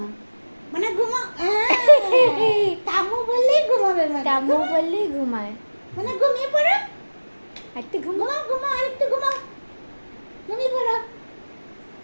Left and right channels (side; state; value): both; inverted; correlation -1.00